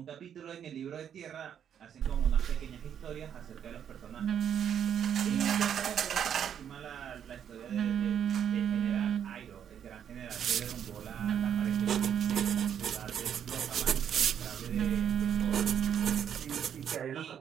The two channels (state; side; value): quieter; left; 8.8 dB